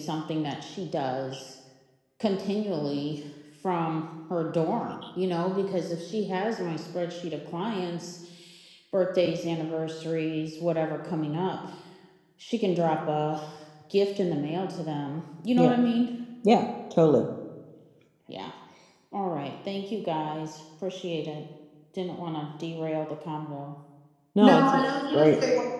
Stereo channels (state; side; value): identical; both; correlation 1.00